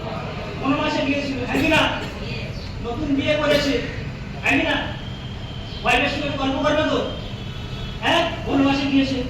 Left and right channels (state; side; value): identical; both; correlation 1.00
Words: বনবাসে গিয়েছিল, তাই না? নতুন বিয়ে করেছে, তাই না? ওয়াইফের সঙ্গে গল্প করবে তো, হ্যাঁ বনবাসে গিয়েছে।